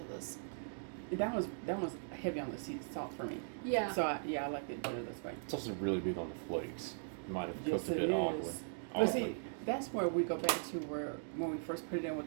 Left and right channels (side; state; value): left; silent; digital silence